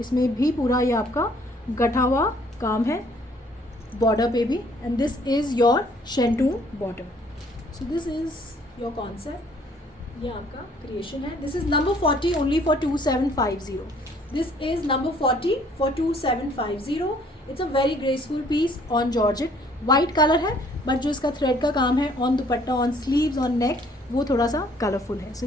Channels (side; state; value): both; normal; correlation 0.60